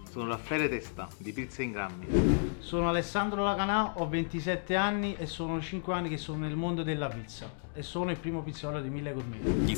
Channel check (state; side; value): silent; right; digital silence